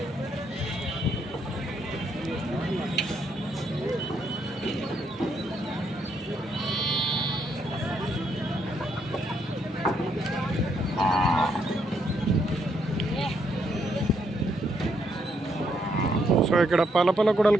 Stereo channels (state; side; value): normal; both; correlation 0.74